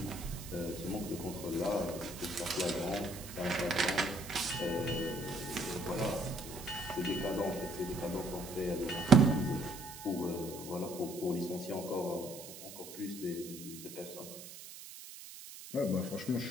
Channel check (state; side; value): noise; right; hiss, 13 dB below the sound